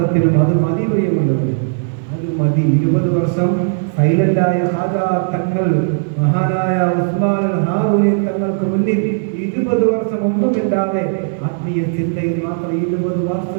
അത് മതി പ്രിയമുള്ളത്, അത് മതി. 20 വർഷം സൈലന്റായ ഖാജാ തങ്ങൾ, മഹാനായ ഉസ്മാൻ ഹാറൂനി തങ്ങൾക്ക് മുന്നിൽ 20 വർഷം ഒന്നുമില്ലാതെ ആത്മീയ ചിന്തയിൽ മാത്രം 20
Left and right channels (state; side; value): silent; left; 61 dB below the other